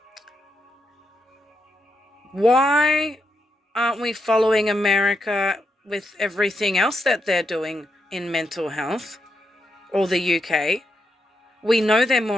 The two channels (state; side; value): normal; both; correlation 0.82